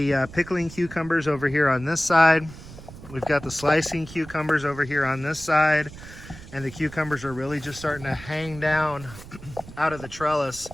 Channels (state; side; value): noise; right; rumble, 16 dB below the sound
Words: pickling cucumbers over here on this side. We've got the slicing cucumbers over here on this side. And the cucumbers are really just starting to hang down out of the trellis